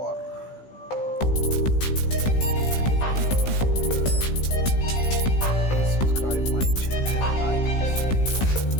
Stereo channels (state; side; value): late; right; 16 ms